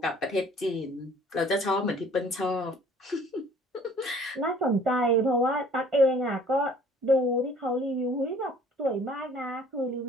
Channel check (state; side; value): normal; both; correlation 0.53